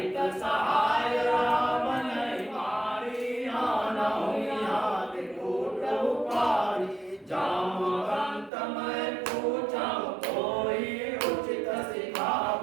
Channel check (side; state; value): left; drops out; at 8.5 s